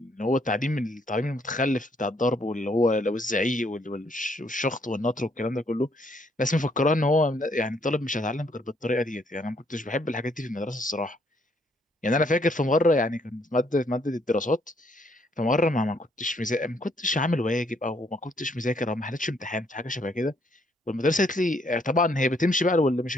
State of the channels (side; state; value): both; normal; correlation 0.69